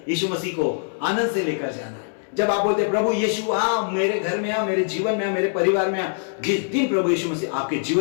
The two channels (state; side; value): silent; right; digital silence